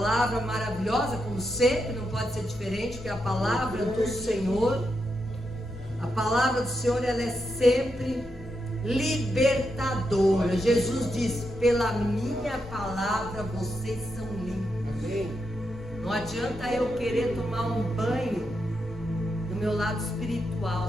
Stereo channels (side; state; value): both; normal; correlation 0.84